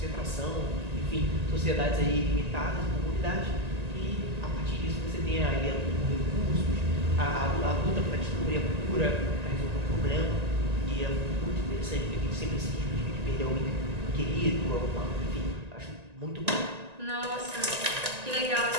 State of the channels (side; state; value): left; late; 1.9 ms